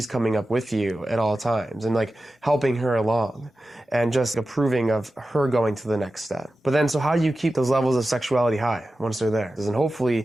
coming up with you at all times and like helping her along and just approving of her going to the next step. But then, so how do you keep those levels of sexuality high once they're there? And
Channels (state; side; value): normal; both; correlation 0.94